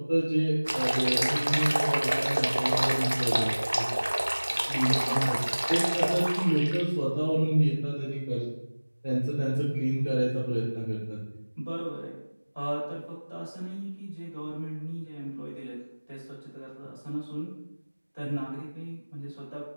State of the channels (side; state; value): both; inverted; correlation -1.00